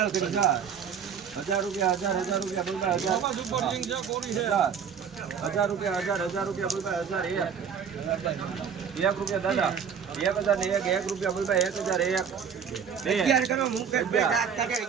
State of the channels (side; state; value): left; quieter; 7.2 dB